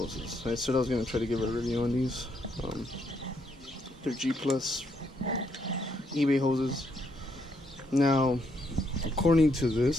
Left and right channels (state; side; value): normal; both; correlation 0.75